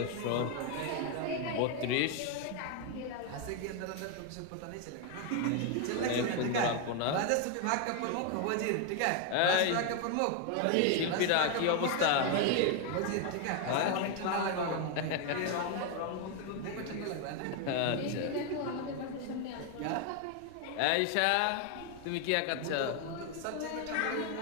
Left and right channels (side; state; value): both; different; correlation 0.01